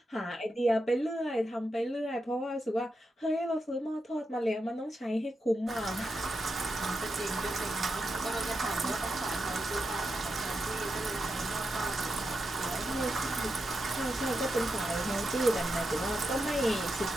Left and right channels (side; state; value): both; normal; correlation 0.87